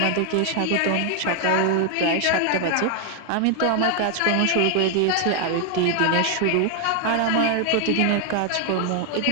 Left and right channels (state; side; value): different; both; correlation 0.00